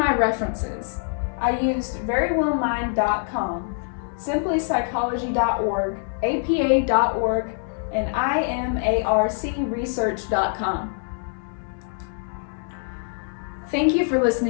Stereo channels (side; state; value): right; silent; 62 dB below the other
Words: references. I used verywellmind.com, simplypsychology.org, apa.org, and imarcresearch.com. Thank you for